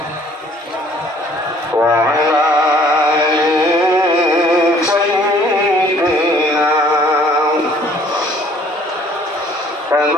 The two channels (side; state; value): both; normal; correlation 0.57